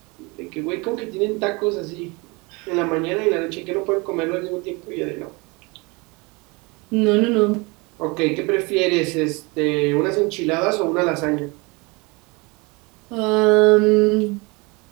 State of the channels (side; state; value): left; quieter; 27.2 dB